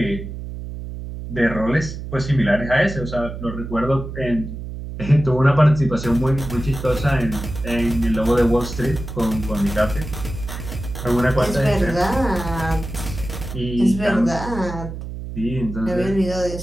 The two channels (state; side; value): noise; right; hum, 8 dB below the sound